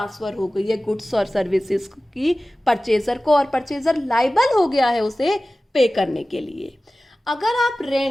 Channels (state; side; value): normal; both; correlation 0.97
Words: हो गई है गुड्स और सर्विसेज की परचेजर को, और परचेजर लायबल हो गया है उसे पे करने के लिए। अगर आप